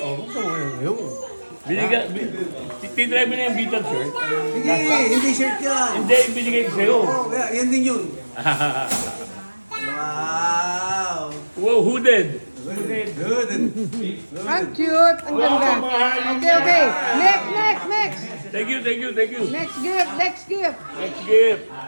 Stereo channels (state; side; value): inverted; both; correlation -1.00